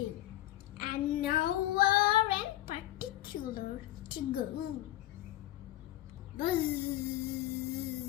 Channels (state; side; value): quieter; right; 15.1 dB